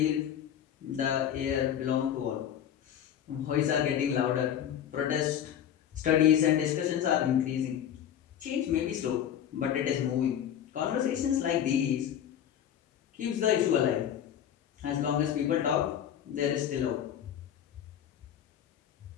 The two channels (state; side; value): quieter; right; 9.8 dB